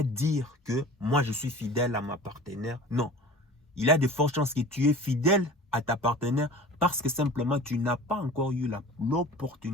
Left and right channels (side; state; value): both; normal; correlation 0.40